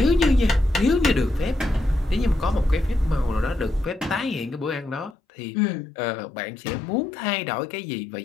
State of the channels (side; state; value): right; drops out; at 5.2 s